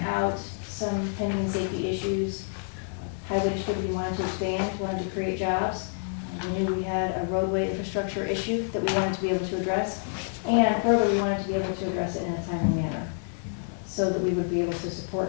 out, some pending safety issues. Highway Distributing wanted to expand, wanted to create jobs. We knew we had a roadway infrastructure issue that we wanted to be able to address. And further, we wanted to be able to address it in a timely manner so that we would be able to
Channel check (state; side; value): silent; right; digital silence